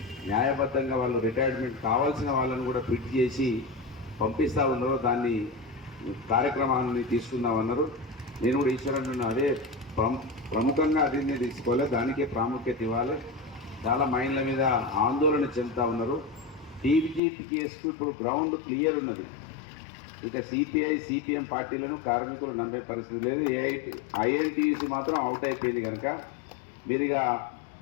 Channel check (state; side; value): drops out; right; at 17.2 s